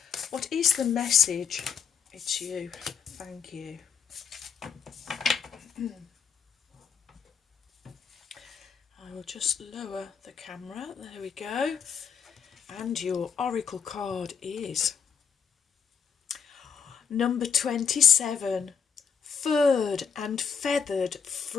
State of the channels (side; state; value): right; quieter; 6.9 dB